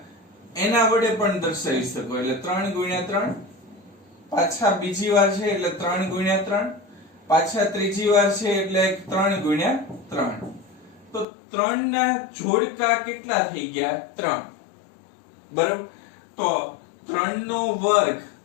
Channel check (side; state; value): right; drops out; at 11.2 s